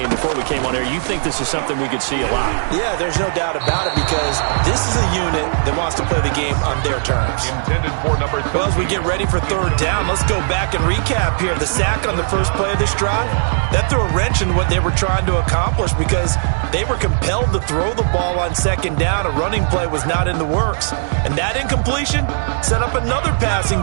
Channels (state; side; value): silent; left; digital silence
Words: before we came on air, you think this is something we could see a lot. Yeah, there's no doubt about it because this is a unit that wants to play the game on their terms. Intended for number 3. Well, as we get ready for third down, let's go back and recap here. The sack on the first play of this drive, that threw a wrench in what they were trying to accomplish because they were compelled to throw the ball on second down. A running play was not in the works. And that incompletion set up another passing